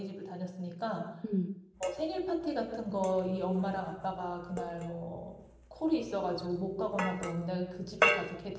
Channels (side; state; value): both; identical; correlation 1.00